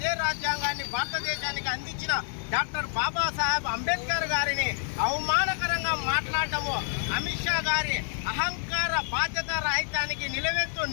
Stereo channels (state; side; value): silent; right; 55 dB below the other